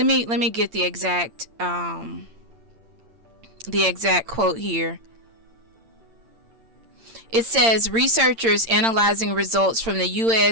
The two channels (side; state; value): left; late; 8.8 ms